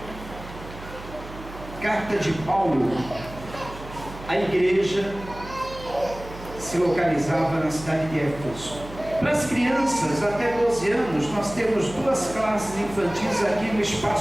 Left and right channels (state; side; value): noise; right; hum, 14 dB below the sound